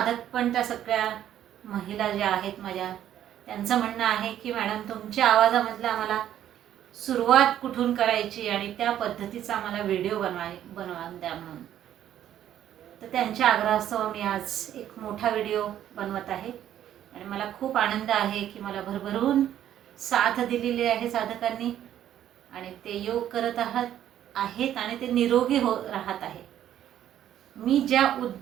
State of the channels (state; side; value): quieter; left; 11.2 dB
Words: पण त्या सगळ्या महिला ज्या आहेत माझ्या, त्यांचं म्हणणं आहे की मॅडम तुमच्या आवाजामधलं आम्हाला सुरुवात कुठून करायची आणि त्या पद्धतीचा आम्हाला व्हिडिओ बनवा द्या म्हणून. तर त्यांच्या आग्रहास्तव मी आज एक मोठा व्हिडिओ बनवत आहे आणि मला खूप आनंद आहे की मला भरभरून साथ दिलेली आहे साधकांनी आणि ते योग करत आहेत आणि ते निरोगी राहत आहे. मी ज्या